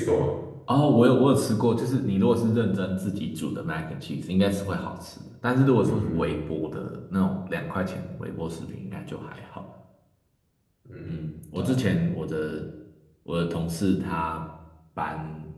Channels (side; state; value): both; identical; correlation 1.00